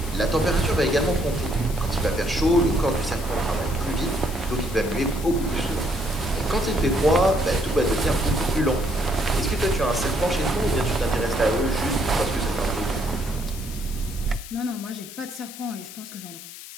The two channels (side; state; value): left; noise; hiss, 14 dB below the sound